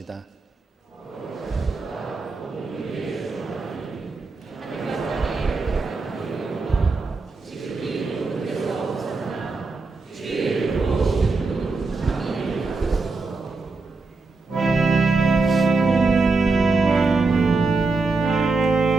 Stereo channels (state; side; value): quieter; left; 3.8 dB